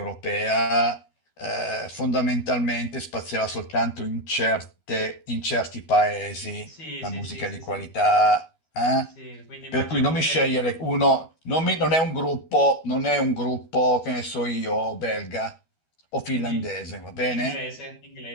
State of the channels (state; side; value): late; right; 12 ms